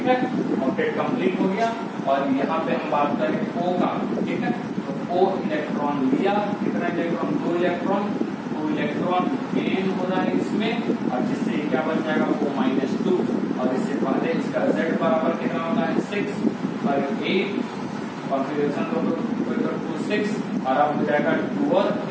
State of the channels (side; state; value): both; identical; correlation 1.00